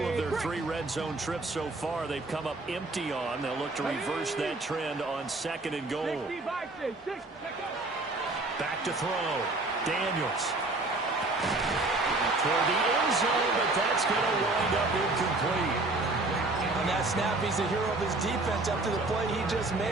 their 3 red zone trips so far, they've come up empty on. They'll look to reverse that trend on 2nd and goal. Back to throw. Daniels. Toward the end zone, but that's going to wind up incomplete. On that snap, he's the hero of his defense after the play he just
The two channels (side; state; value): left; quieter; 3.0 dB